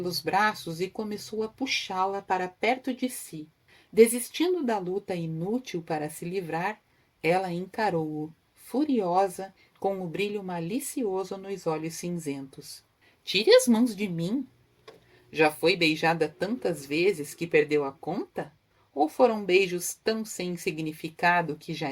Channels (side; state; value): both; identical; correlation 1.00